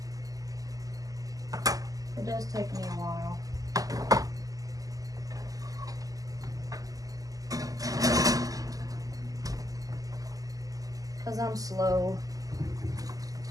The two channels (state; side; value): late; left; 0.17 ms